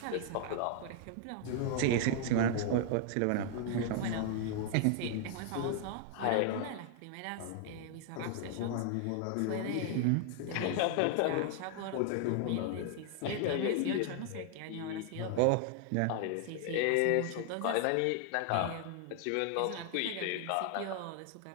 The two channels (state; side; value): different; both; correlation 0.00